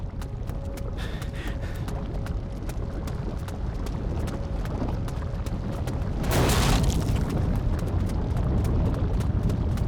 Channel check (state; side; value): identical; both; correlation 1.00